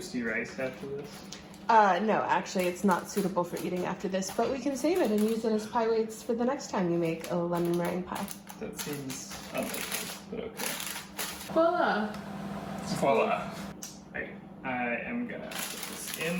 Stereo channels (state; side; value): identical; both; correlation 1.00